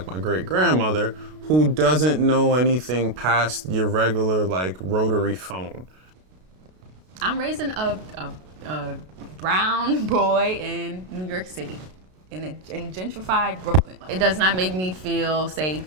my great-grandmother, who doesn't know anything past your regular like rotary phone. I'm raising a brown boy in New York City, in gentrified Brooklyn. It does not make me feel safe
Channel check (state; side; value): late; left; 32 ms